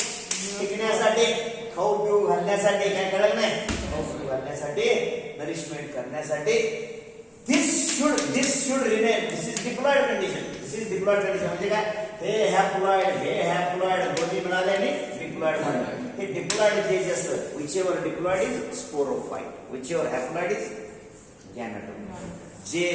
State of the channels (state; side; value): identical; both; correlation 1.00